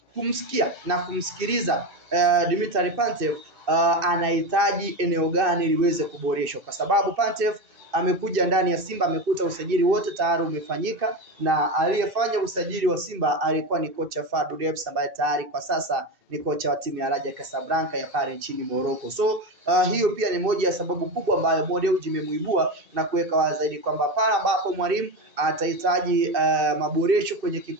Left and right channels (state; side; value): late; left; 2.6 ms